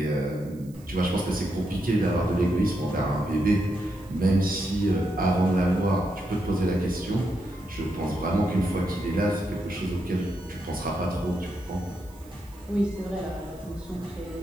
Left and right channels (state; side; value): noise; right; hiss, 26 dB below the sound